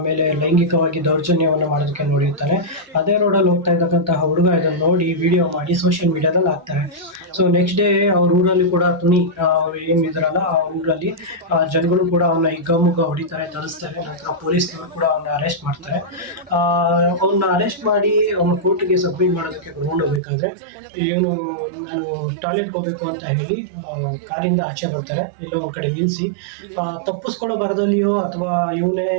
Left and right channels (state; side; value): drops out; left; at 20.2 s